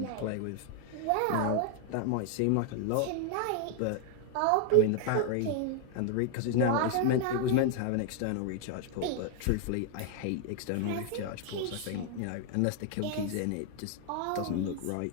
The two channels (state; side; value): different; both; correlation 0.00